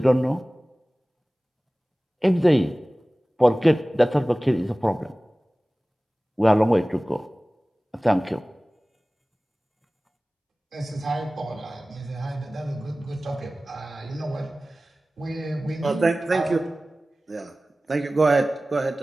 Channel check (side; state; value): both; normal; correlation 0.97